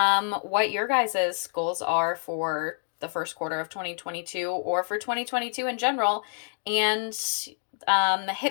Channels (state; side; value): silent; right; digital silence